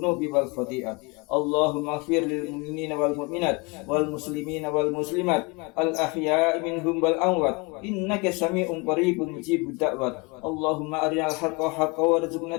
wal khati'at. Allahumma ighfir lil mu'minina wal mu'minat wal muslimina wal muslimat al ahya'i minhum wal amwat innaka sami'un qaribun mujibud da'wat. Allahumma arinal haqqa haqqan warzuqna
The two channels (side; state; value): right; quieter; 28.5 dB